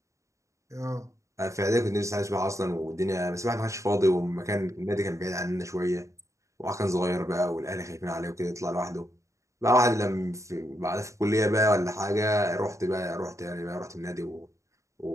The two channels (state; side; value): late; left; 0.15 ms